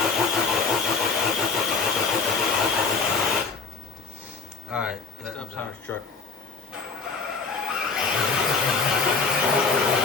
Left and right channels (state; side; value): quieter; right; 4.7 dB